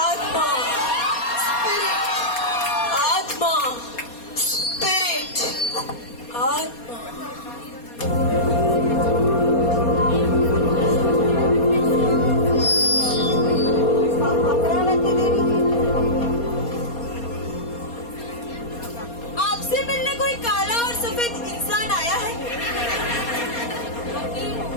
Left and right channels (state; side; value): late; right; 4.2 ms